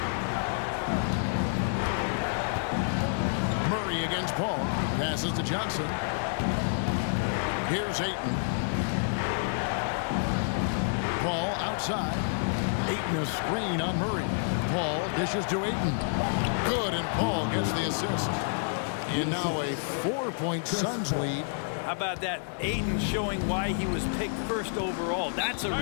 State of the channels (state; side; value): silent; right; 59 dB below the other